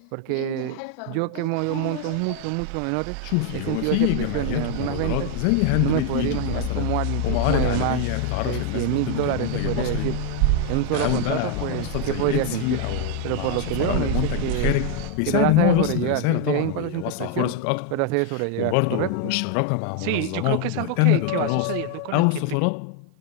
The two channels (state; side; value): different; both; correlation 0.01